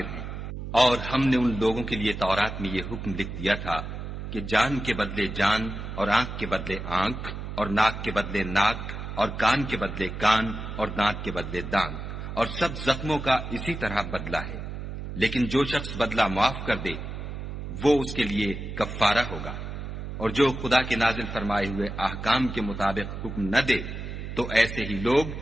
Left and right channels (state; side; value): noise; right; hum, 7 dB below the sound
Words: ہیں۔ اور ہم نے ان لوگوں کے لیے تورات میں یہ حکم لکھ دیا تھا کہ جان کے بدلے جان، اور آنکھ کے بدلے آنکھ، اور ناک کے بدلے ناک، اور کان کے بدلے کان، اور دانت کے بدلے دانت، اور سب زخموں کا اسی طرح بدلہ ہے۔ لیکن جو شخص بدلہ معاف کر دے وہ اس کے لیے کفارہ ہوگا، اور جو خدا کے نازل فرمائے ہوئے احکام کے مطابق حکم نہ دے تو ایسے ہی لوگ